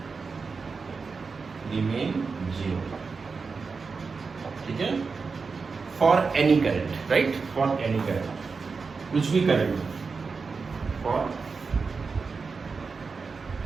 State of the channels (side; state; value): left; quieter; 4.8 dB